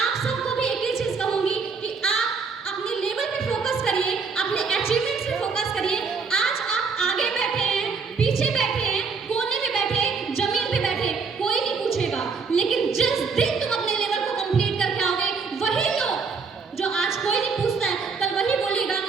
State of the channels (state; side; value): quieter; left; 5.1 dB